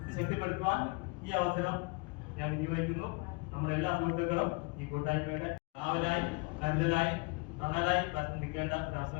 ഇത് ശക്തിപ്പെടുത്തുവാൻ ഈ അവസരം ഞാൻ വിനിയോഗിക്കുന്നു. നമ്മുടെ എല്ലാ സുഹൃത്തുക്കളും ഈ കൂട്ടായ്മയുടെ കാവലായി കരുതലായി തണലായി നിൽക്കേണ്ട ഒരു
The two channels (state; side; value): quieter; right; 28.8 dB